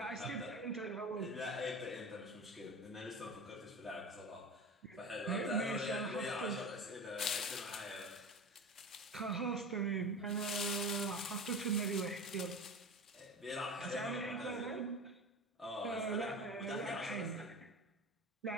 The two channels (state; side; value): normal; both; correlation 0.31